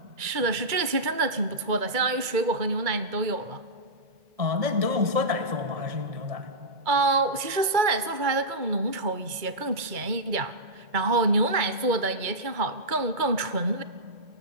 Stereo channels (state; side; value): late; left; 2.2 ms